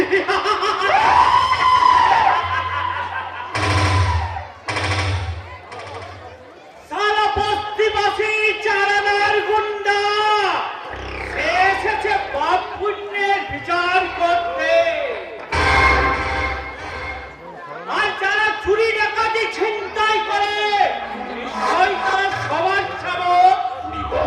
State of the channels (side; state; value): both; identical; correlation 1.00